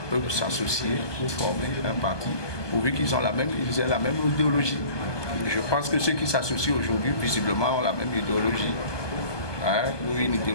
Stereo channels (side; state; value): right; late; 1.2 ms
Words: peuvent s'associer pour former un parti, pourvu qu'ils aient la même idéologie. Je pense que ceux qui s'associent aujourd'hui, visiblement, ont la même idéologie. Ou une